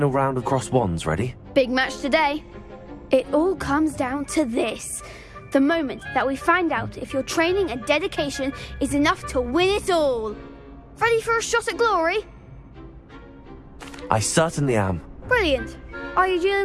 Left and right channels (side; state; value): both; identical; correlation 1.00